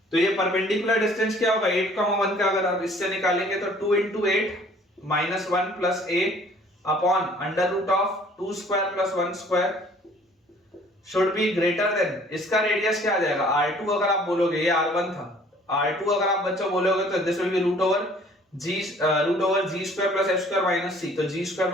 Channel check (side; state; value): both; normal; correlation 0.55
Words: तो ये परपेंडिकुलर डिस्टेंस क्या होगा? 8,1 का अगर आप इससे निकालेंगे तो 2 into 8 minus 1 plus a upon under root of 2 square plus 1 square should be greater than, इसका रेडियस क्या आ जाएगा? R2 अगर आप बोलोगे, ये R1 था, R2 अगर आप बच्चों बोलोगे तो this will be root over G square plus F square minus C. तो जी स्क्वायर